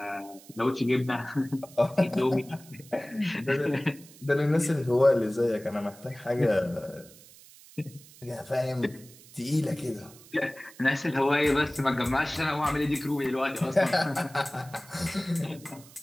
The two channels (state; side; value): noise; right; hiss, 22 dB below the sound